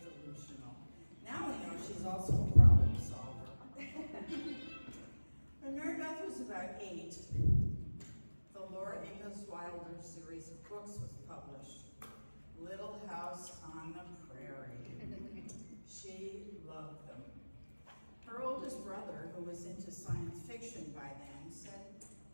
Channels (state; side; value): inverted; both; correlation -1.00